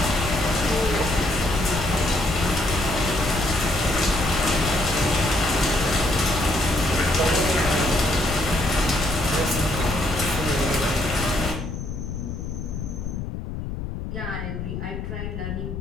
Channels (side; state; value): left; noise; rumble, 6 dB below the sound